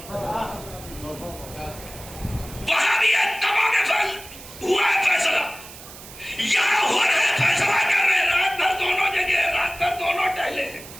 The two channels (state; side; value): noise; right; hiss, 16 dB below the sound